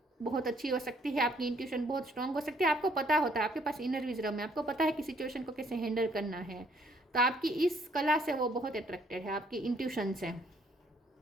बहुत अच्छी हो सकती है, आपकी इंट्यूशन बहुत स्ट्रांग हो सकती है, आपको पता होता है, आपके पास इनर विजडम है, आपको पता है कि सिचुएशन को कैसे हैंडल करना है। तो आपकी इस कला से वो बहुत अट्रैक्टेड है, आपकी इंट्यूशन से।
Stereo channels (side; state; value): both; normal; correlation 0.65